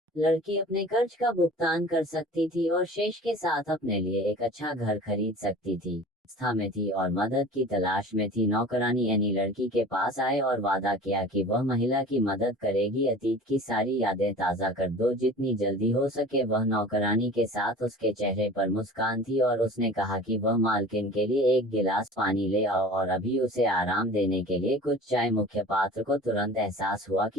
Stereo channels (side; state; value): both; normal; correlation 0.41